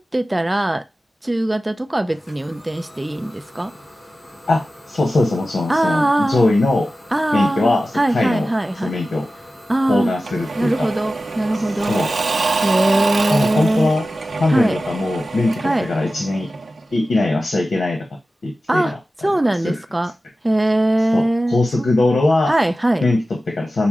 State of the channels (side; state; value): both; normal; correlation 0.94